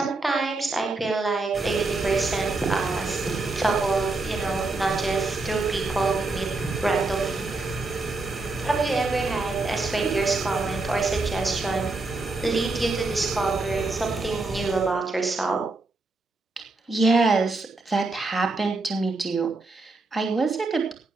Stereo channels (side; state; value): left; quieter; 3.4 dB